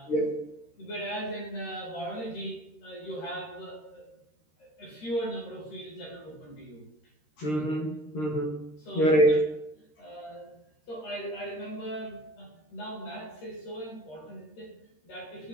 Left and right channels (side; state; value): right; late; 13 ms